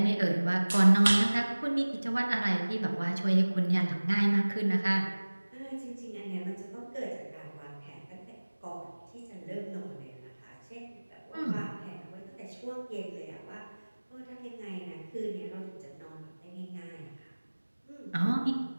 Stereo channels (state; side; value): inverted; both; correlation -1.00